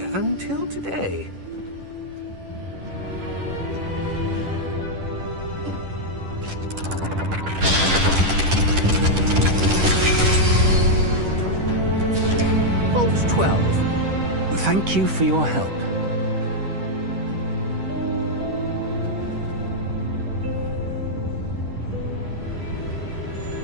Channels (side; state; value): left; late; 10 ms